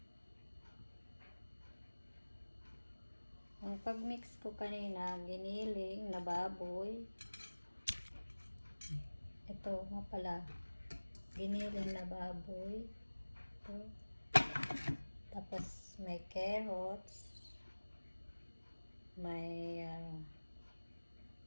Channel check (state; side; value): inverted; both; correlation -1.00